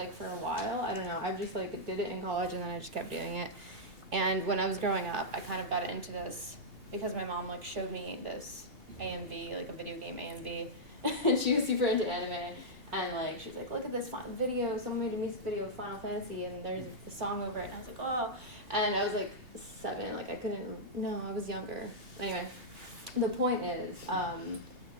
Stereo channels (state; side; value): late; left; 2.7 ms